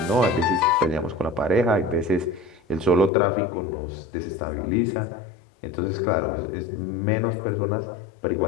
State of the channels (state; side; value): drops out; right; at 3.1 s